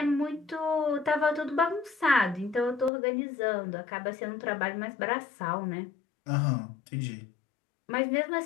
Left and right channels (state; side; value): drops out; right; at 2.9 s